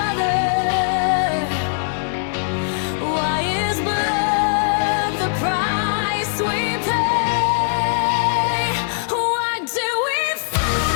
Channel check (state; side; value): silent; right; 65 dB below the other